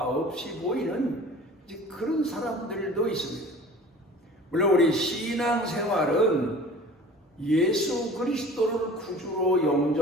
없이 보이는 이제 그런 사람들도 있습니다. 물론 우리 신앙생활은 예수 그리스도를 구주로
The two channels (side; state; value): both; normal; correlation 0.43